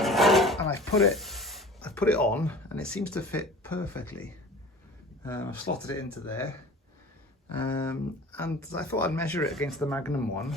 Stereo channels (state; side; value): normal; both; correlation 0.41